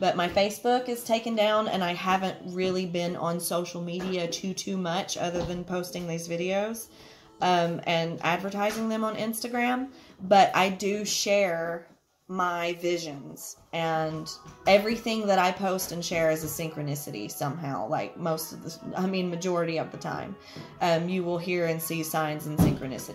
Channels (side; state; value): both; identical; correlation 1.00